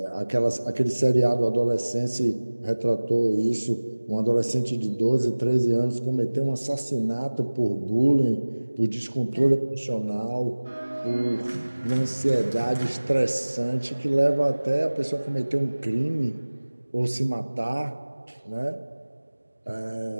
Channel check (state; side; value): inverted; both; correlation -1.00